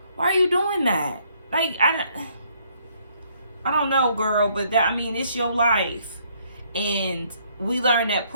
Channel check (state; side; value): inverted; both; correlation -0.67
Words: Why are you doing that? Like, I don't know, girl, but that, I mean, it's your life. And we learned that